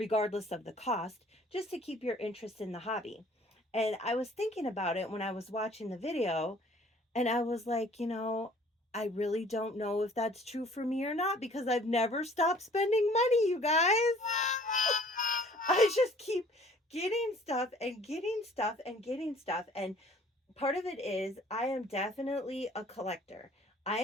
of the cost, just to keep your interest in the hobby. And I was thinking about it when I was watching the video, and I was like, I really don't know if that's true for me or not, because I've never stopped spending money, you guys. I just keep getting stuff and getting stuff and getting stuff. And part of it is I am definitely a collector.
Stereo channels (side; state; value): both; normal; correlation 0.54